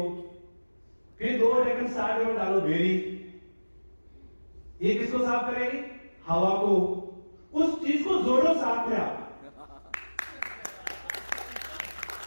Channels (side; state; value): both; inverted; correlation -1.00